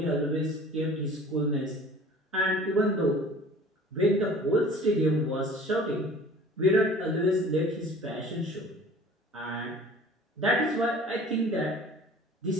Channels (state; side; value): normal; both; correlation 0.46